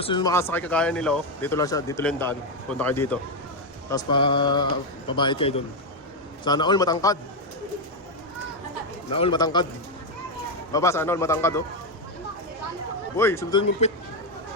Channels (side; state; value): both; normal; correlation 0.05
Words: nyo makasakay kagaya nila, oh, dito lang siya, dito lang yung daan. Punta kayo dito. Tapos pabayad kayo dun. Sana all matangkad. Na all matangkad. Baba, sana all matangkad oh. Uy, sundin mong pit.